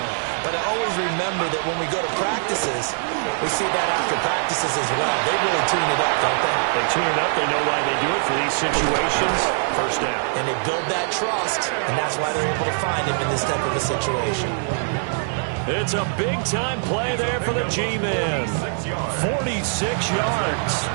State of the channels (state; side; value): silent; left; 64 dB below the other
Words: But I always remember that when we go to practices, we see that after practices as well. They really tune it up, don't they? They tune it up. They know why they do it for these situations. First down. And they build that trust, and that's why they're able to find him in this type of a situation. It's a big-time play there for the G-men. 46 yards.